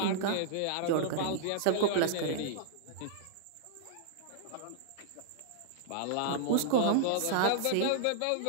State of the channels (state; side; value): different; both; correlation -0.02